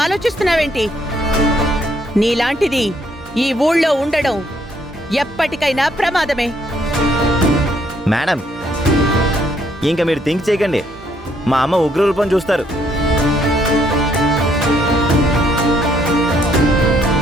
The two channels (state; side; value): normal; both; correlation 0.69